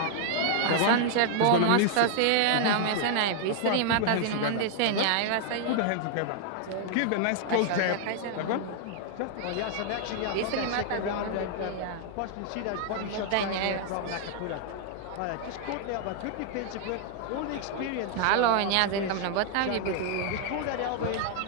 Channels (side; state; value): both; different; correlation 0.00